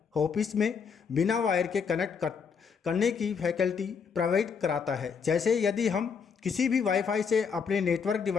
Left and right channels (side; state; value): right; quieter; 6.1 dB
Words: ऑफिस में बिना वायर के कनेक्ट करने की फैसिलिटी प्रोवाइड कराता है। जैसे यदि हम किसी भी वाईफाई से अपने नेटवर्क